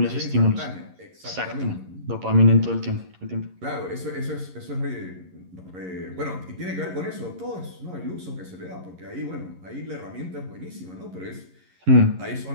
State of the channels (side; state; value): left; late; 11 ms